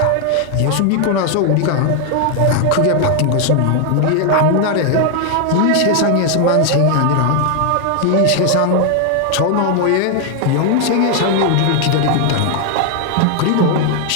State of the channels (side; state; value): both; different; correlation 0.00